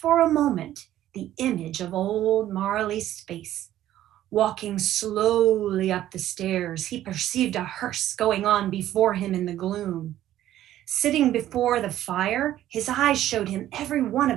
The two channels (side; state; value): left; quieter; 12.9 dB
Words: a moment, the image of old Marley's face. Walking slowly up the stairs, he perceived a hearse going on before him in the gloom. Sitting before the fire, his eyes showed him every one